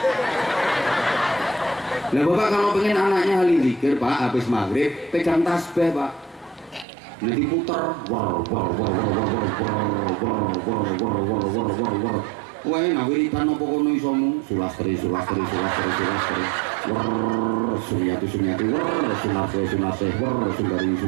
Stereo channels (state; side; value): drops out; left; at 6.9 s